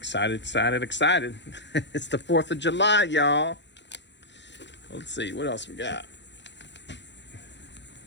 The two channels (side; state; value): right; late; 0.52 ms